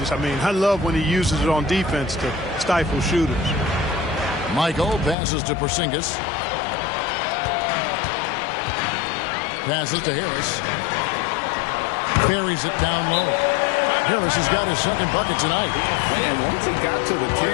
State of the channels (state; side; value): drops out; right; at 5.2 s